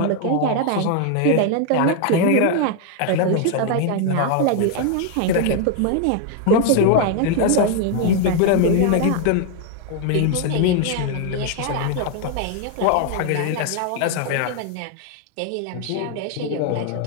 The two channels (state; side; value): different; both; correlation 0.00